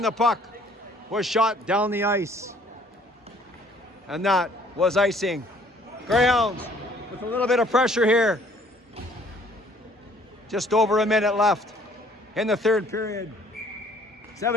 the puck was shot down the ice. And that was icing. Greyhounds with a little bit of pressure here. Just over a minute left in the third period.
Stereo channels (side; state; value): both; normal; correlation 0.59